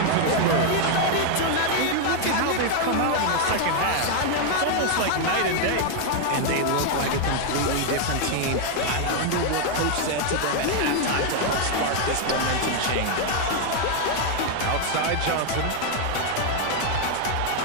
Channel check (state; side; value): different; both; correlation 0.00